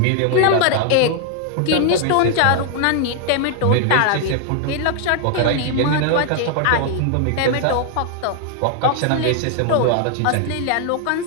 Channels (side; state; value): both; different; correlation 0.00